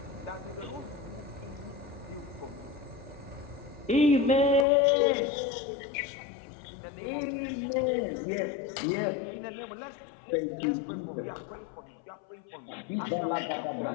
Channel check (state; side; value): drops out; right; at 4.7 s